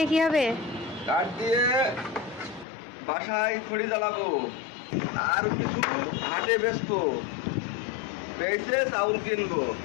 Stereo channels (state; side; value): drops out; right; at 2.7 s